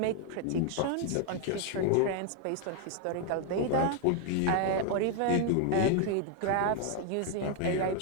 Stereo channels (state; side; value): different; both; correlation 0.00